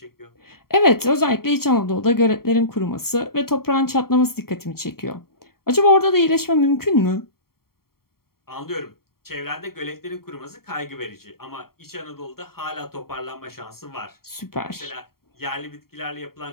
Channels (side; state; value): right; late; 0.93 ms